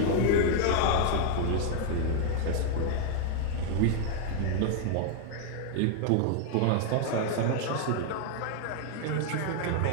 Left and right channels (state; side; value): different; both; correlation 0.00